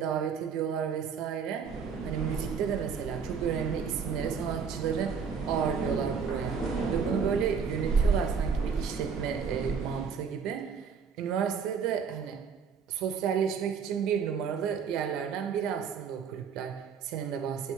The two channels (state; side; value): quieter; left; 6.3 dB